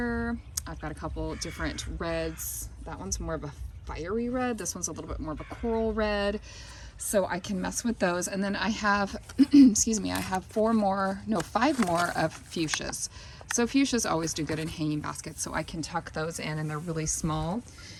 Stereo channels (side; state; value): both; identical; correlation 1.00